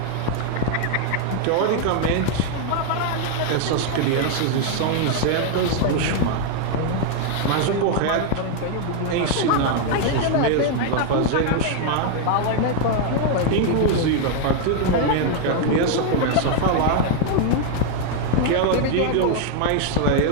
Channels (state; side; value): different; both; correlation 0.00